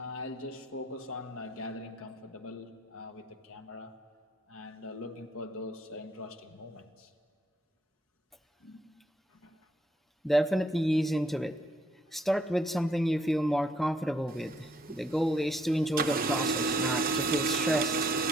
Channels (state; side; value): normal; both; correlation 0.69